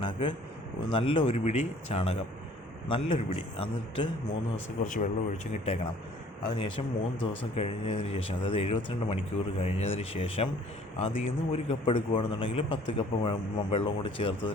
നല്ല 1 പിടി ചാണകം, നല്ലൊരു പിടി, എന്നിട്ട് 3 ദിവസം കുറച്ച് വെള്ളം ഒഴിച്ച് ഇട്ടേക്കണം. അതിനുശേഷം 3 ദിവസം കഴിഞ്ഞതിന് ശേഷം, അതായത് 72 മണിക്കൂർ കഴിഞ്ഞതിന് ശേഷം അതിൽ നിന്ന് 1 കപ്പ് എടുക്കുകയാണെന്നുണ്ടെങ്കിൽ 10 കപ്പ് വെള്ളം കൂടി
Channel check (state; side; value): normal; both; correlation 0.54